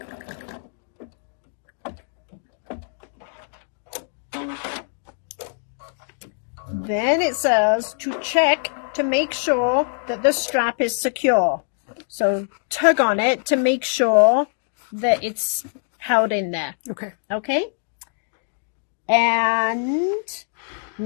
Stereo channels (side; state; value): right; silent; digital silence